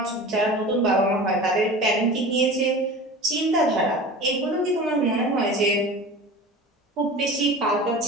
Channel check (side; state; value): both; normal; correlation 0.35